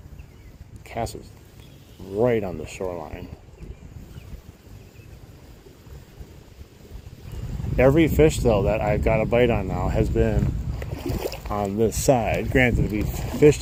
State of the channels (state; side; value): identical; both; correlation 1.00